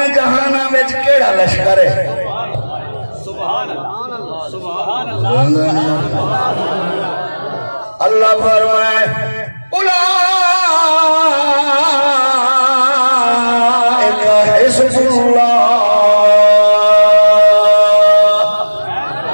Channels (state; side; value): inverted; both; correlation -1.00